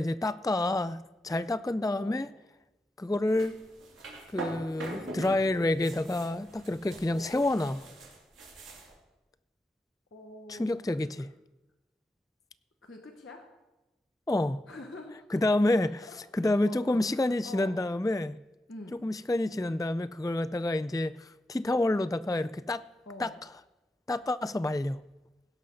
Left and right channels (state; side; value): normal; both; correlation 0.87